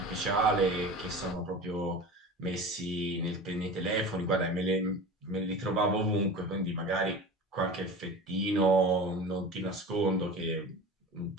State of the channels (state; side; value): normal; both; correlation 0.33